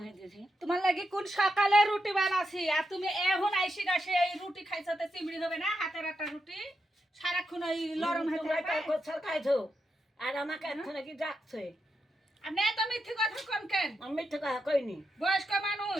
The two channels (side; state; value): both; normal; correlation 0.85